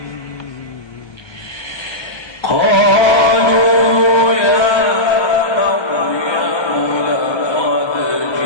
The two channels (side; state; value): right; late; 1.3 ms